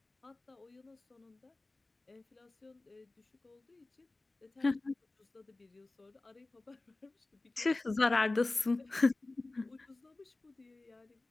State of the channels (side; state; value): right; quieter; 3.1 dB